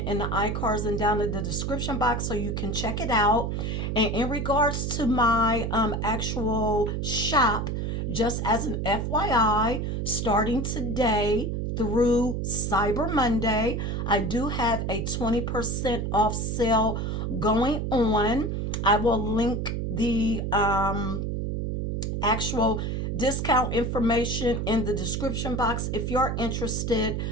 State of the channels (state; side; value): noise; right; hum, 1 dB below the sound